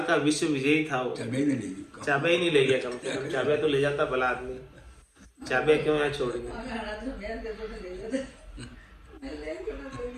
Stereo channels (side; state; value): both; identical; correlation 1.00